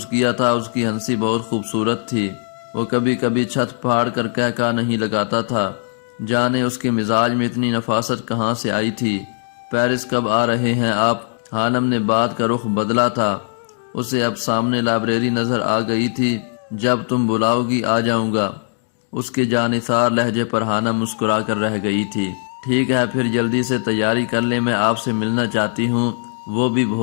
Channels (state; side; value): silent; right; digital silence